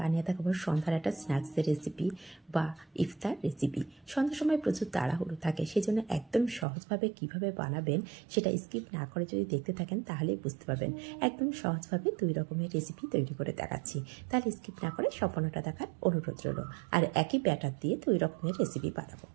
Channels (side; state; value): left; drops out; at 6.7 s